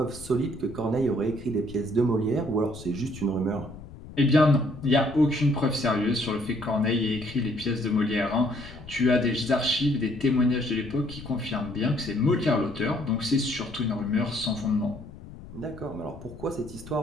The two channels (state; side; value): noise; left; rumble, 16 dB below the sound